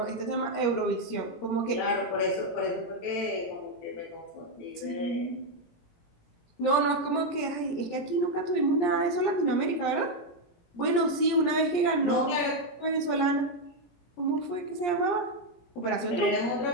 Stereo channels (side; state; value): right; late; 17 ms